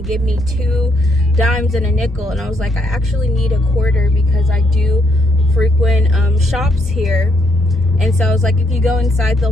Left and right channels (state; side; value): normal; both; correlation 0.74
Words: give me 2 dimes and a nickel, and I was like, I actually need a quarter because I do frequent shops here, and so I was like, if you go inside